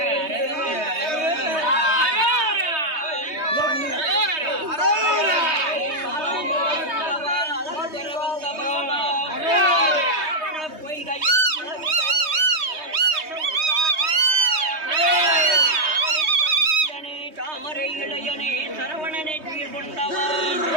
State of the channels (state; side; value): late; left; 3.2 ms